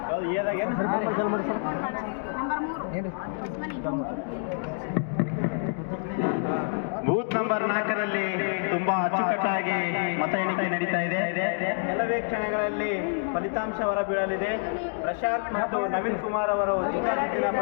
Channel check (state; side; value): silent; right; digital silence